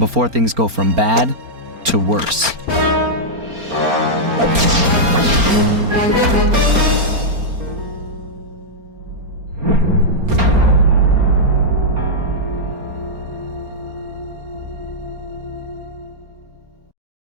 things go from bad to worse.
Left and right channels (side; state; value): left; late; 4.3 ms